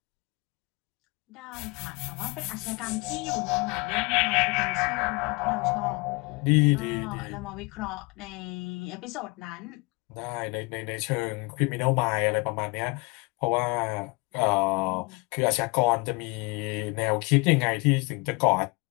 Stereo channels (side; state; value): right; quieter; 26.8 dB